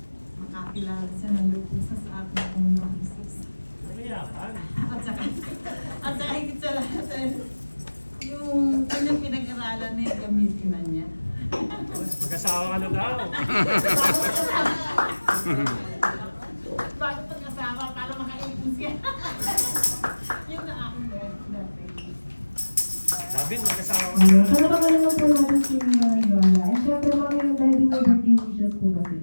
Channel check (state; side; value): inverted; both; correlation -1.00